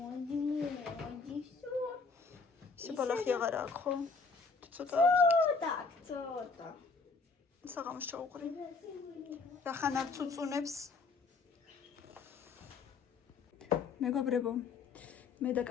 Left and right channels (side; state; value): right; quieter; 4.5 dB